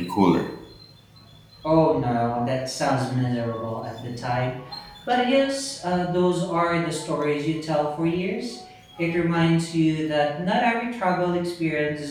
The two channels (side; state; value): both; identical; correlation 1.00